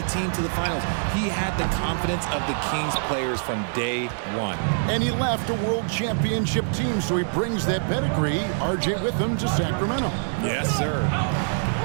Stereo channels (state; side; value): silent; left; digital silence